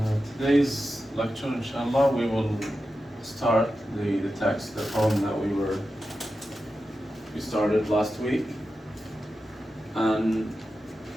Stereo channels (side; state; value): both; normal; correlation 0.91